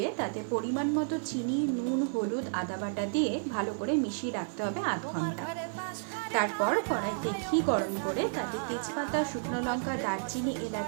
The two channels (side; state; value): left; silent; 57 dB below the other